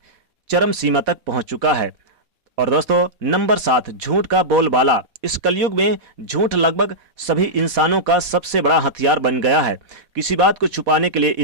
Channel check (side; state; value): left; late; 4.1 ms